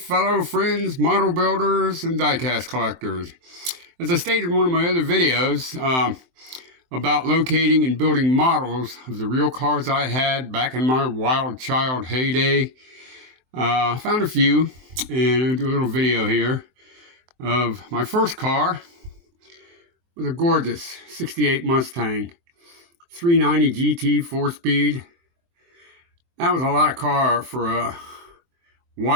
friends, model builders, and diecast collectors. As I stated in one of my other videos about locating and building models of the real cars I had back in my wild child heyday, I found a few, and I'll do a little video here of my first car. It was a gorgeous 68 Mustang, 390 GT 4-speed. That was a lot of car for a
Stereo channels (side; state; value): left; late; 23 ms